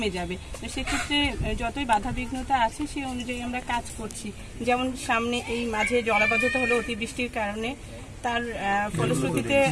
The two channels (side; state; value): both; identical; correlation 1.00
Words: যাবে। তো সেক্ষেত্রে যতই বাধাবিঘ্নতা আছে সেই অনুযায়ী আমরা কাজ করছি। যেমন সামনে এই মাঝে জলাবদ্ধতা হলো অতিবৃষ্টির কারণে, তার ফলশ্রুতিতে